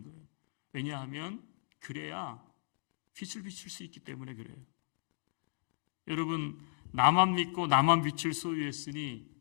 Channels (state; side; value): silent; right; digital silence